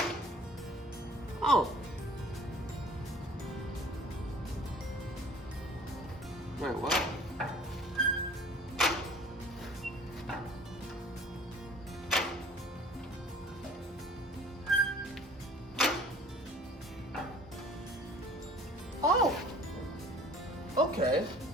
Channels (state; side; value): normal; both; correlation 0.50